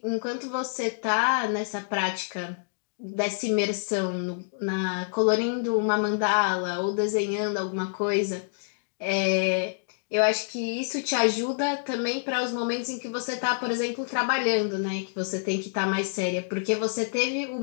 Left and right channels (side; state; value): right; silent; digital silence